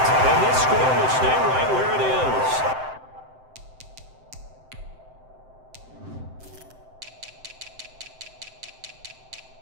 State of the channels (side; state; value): left; late; 7.8 ms